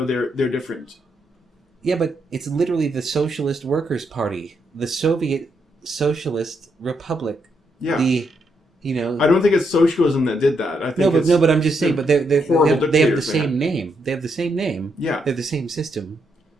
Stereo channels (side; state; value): both; normal; correlation 0.79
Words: they're different. Yeah, but it's literally the Socialist Workers' Party. The Soviet Socialist Republic. Yeah. I don't think it's socialism that did that. I think but I'm just saying. But they have the same name. They have the same name. Yeah. They have the same system.